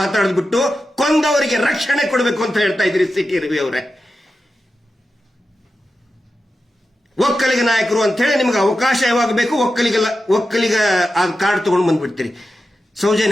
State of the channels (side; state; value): both; normal; correlation 0.91